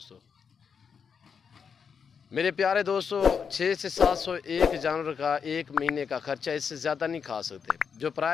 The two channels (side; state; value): right; quieter; 6.5 dB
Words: मेरे प्यारे दोस्तों 6 से 700 एक जानवर का एक महीने का खर्चा, इससे ज़्यादा नहीं खा सकते। जो